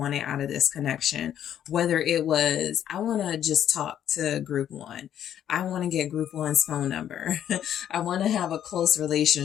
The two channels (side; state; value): right; quieter; 10.3 dB